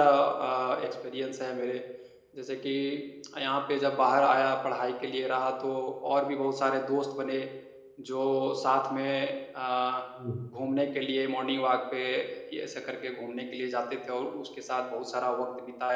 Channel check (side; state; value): both; identical; correlation 1.00